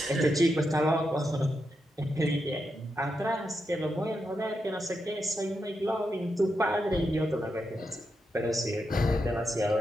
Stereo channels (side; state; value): both; normal; correlation 0.85